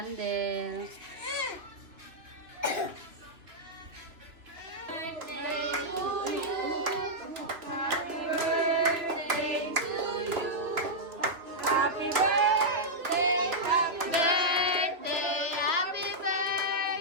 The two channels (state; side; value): late; left; 2.8 ms